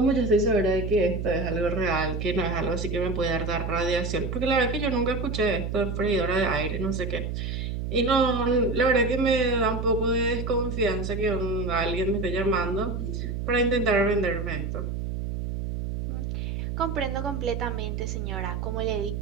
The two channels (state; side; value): noise; right; hum, 3 dB below the sound